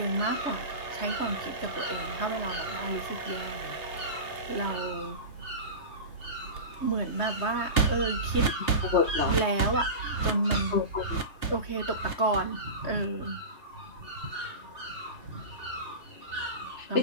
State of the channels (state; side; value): late; right; 3.0 ms